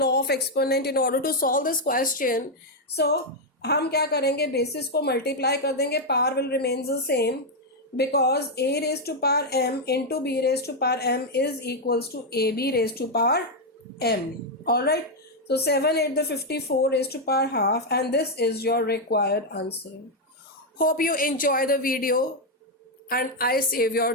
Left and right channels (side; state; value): both; normal; correlation 0.01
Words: law of exponent in order to solve this question. So हम क्या करेंगे, बेसिस को मल्टीप्लाई कर देंगे, power will remain the same, because a raised to power m into b raised to power m is equals to ab raised to power m. All right. So 7 8 the 54 raised to power half, and this is your required answer. Hope you enjoy the video and I save your